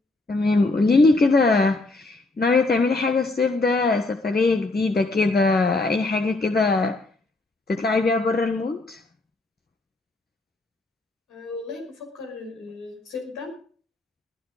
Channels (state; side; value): quieter; right; 3.1 dB